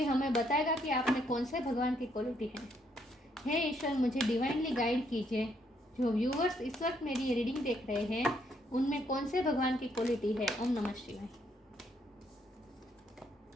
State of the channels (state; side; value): normal; both; correlation 0.72